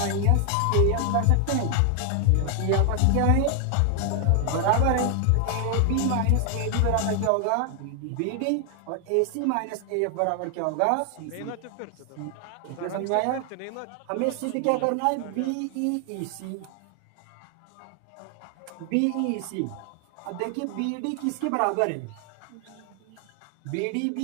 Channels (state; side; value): different; both; correlation 0.00